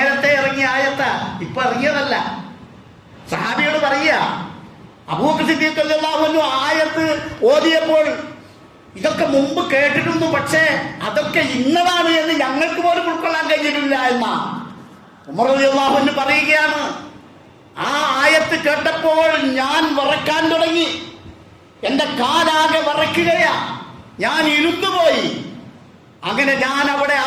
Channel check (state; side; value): identical; both; correlation 1.00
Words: ഇറങ്ങിയ ആയത്താ, ഇപ്പൊ ഇറങ്ങിയതല്ല. സഹാബിയോട് പറയുക, അബൂബക്കർ സിദ്ദീഖ് റളിയല്ലാഹു അൻഹു ആയത്ത് ഓതിയപ്പോൾ ഇതൊക്കെ മുമ്പ് കേട്ടിട്ടുണ്ട്, പക്ഷേ അതൊക്കെ ഇന്നതാണ് എന്ന് ഞങ്ങൾക്ക് പോലും ഉൾക്കൊള്ളാൻ കഴിഞ്ഞിട്ടില്ല എന്നാ ഉമർ റളിയല്ലാഹു അൻഹു പറയുകയാണ്. ആ ആയത്ത് കേട്ടപ്പോൾ ഞാൻ വിറക്കാൻ തുടങ്ങി, എന്റെ കാലാകെ വിറയ്ക്കുകയാ, ഞാൻ ഇരുന്നുപോയി. അങ്ങനെ ഞാൻ അവിടെ